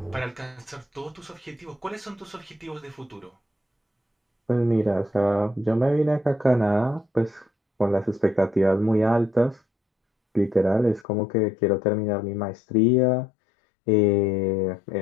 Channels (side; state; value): right; drops out; at 11.1 s